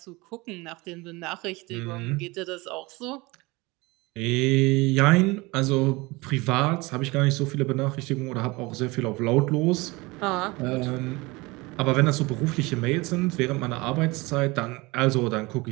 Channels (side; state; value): left; quieter; 23.6 dB